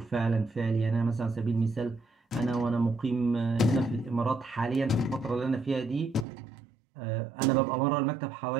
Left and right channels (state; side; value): drops out; left; at 6.2 s